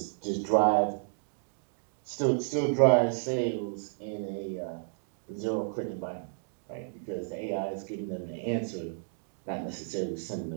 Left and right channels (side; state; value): left; silent; digital silence